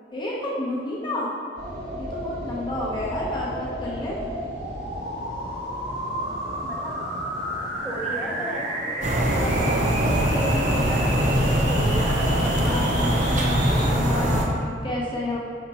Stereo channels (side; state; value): both; normal; correlation 0.55